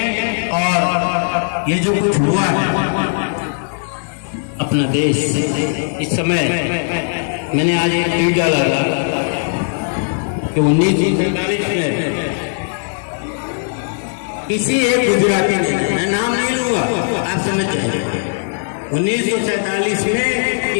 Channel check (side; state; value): right; silent; digital silence